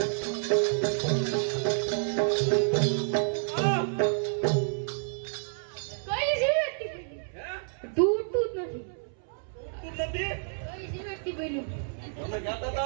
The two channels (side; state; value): left; silent; 58 dB below the other